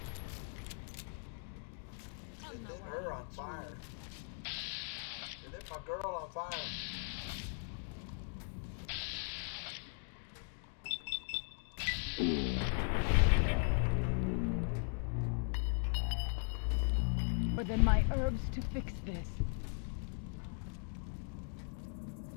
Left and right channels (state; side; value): silent; right; 52 dB below the other